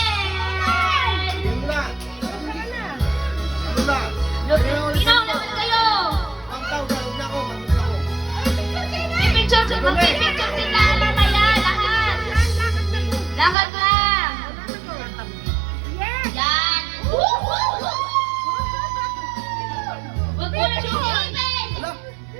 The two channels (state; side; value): drops out; left; at 13.6 s